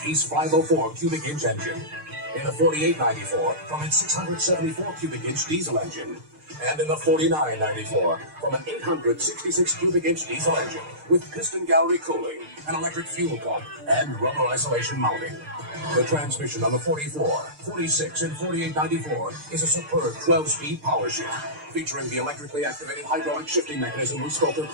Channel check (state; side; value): late; left; 6.6 ms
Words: 504 cubic inch engine. In the 4894, from its 674 cubic inch diesel engine. And in the 4994, from an 866 cubic inch diesel engine with piston gallery cooling, an electric fuel pump, and rubber isolation mounting. The transmission on the 44, 46, and 4894 is a superb 12-speed power shift, featuring the electrically activated hydraulic shifting mechanism we spoke of